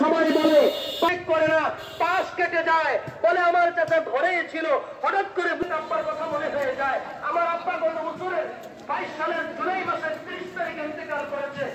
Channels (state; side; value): identical; both; correlation 1.00